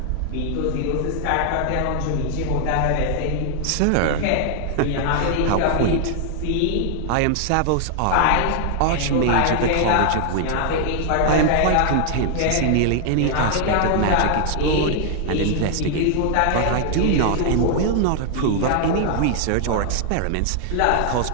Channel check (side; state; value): both; different; correlation 0.00